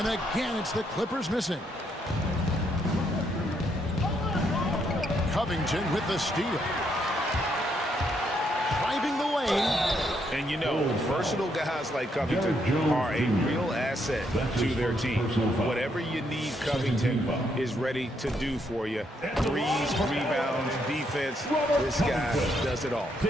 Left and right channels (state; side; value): normal; both; correlation 0.75